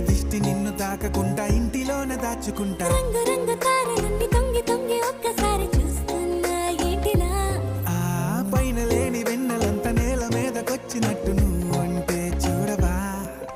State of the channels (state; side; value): identical; both; correlation 1.00